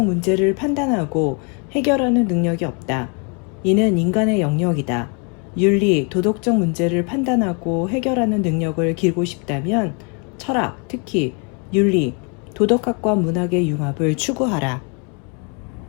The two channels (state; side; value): quieter; right; 36.1 dB